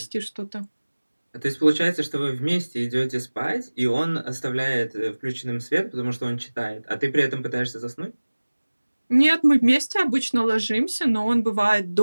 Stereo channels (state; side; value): inverted; both; correlation -1.00